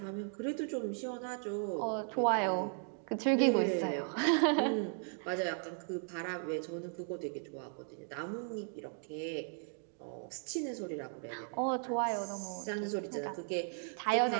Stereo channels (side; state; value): left; silent; 53 dB below the other